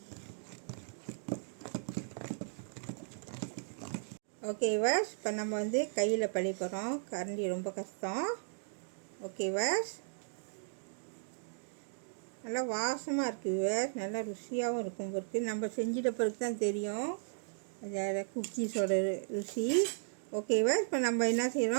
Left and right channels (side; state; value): left; silent; digital silence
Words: ஓகேவா, இப்போ நம்ம கையில் பழி போகிறோம். கரண்டி ரொம்ப கஷ்டம். ஓகேவா, நல்லா வாசமாக இருக்குது. நல்லா ருசியாகவும் இருக்கும். இருக்குது நம்ம செஞ்சிட்ட பிறகு தான் தெரியும் அந்த குக்கீஸோட ருசி. ஓகேவா, இப்போ நம்ம என்ன